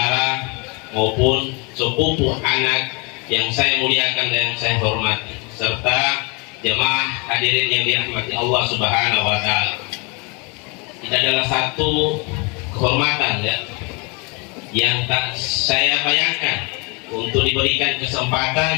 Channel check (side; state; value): right; quieter; 31.1 dB